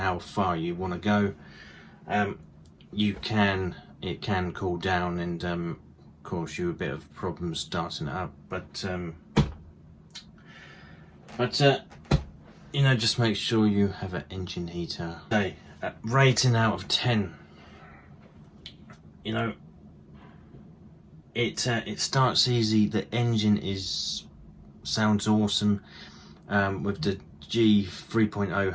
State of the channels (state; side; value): identical; both; correlation 1.00